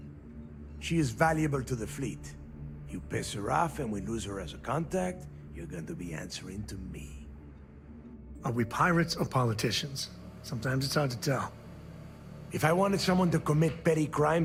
She is valuable to the fleet. You piss her off and we lose her as a contact, you're going to be answering to me. Are we pirates or politicians? Sometimes it's hard to tell. If I wanted someone to commit petty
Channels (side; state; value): both; identical; correlation 1.00